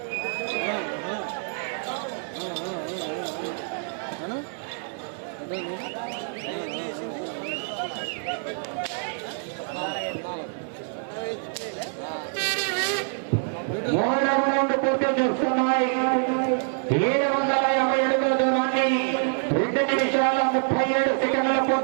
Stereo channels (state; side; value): silent; left; 61 dB below the other